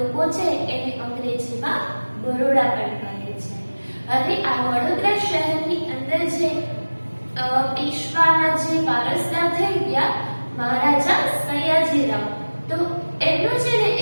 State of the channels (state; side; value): inverted; both; correlation -1.00